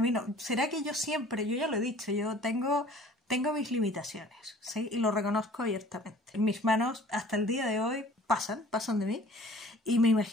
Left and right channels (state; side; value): normal; both; correlation 0.50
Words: no. ¿Será que yo ya lo he dicho, yo tengo mis limitaciones, ¿sí? Y lo reconozco abiertamente. Mis manos hasta el día de hoy pasan de mí. Y me